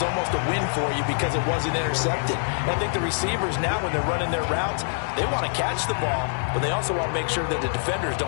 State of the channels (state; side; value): silent; right; digital silence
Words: almost a win for you because it wasn't intercepted. And I think the receivers now, when they're running their routes, they want to catch the ball, but they also want to make sure that the defenders